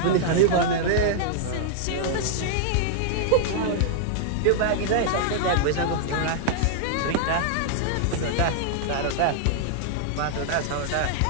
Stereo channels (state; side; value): different; both; correlation -0.01